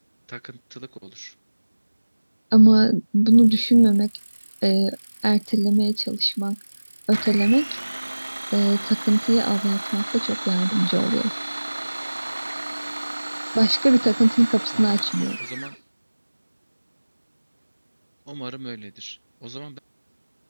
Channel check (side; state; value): both; inverted; correlation -1.00